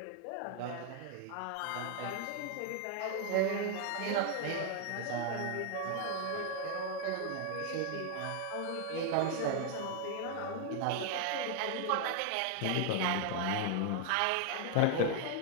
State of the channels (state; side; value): different; both; correlation 0.00